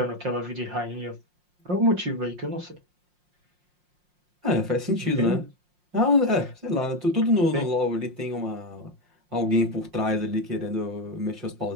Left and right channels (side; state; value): left; late; 5.6 ms